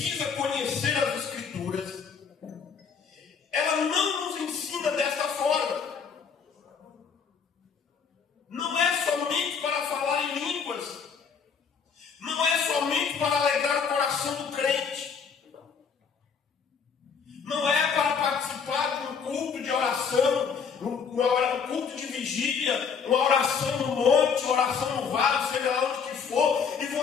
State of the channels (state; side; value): quieter; right; 6.2 dB